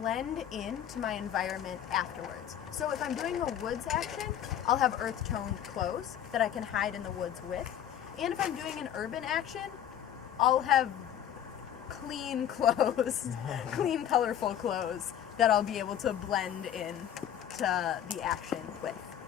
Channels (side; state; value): right; quieter; 10.1 dB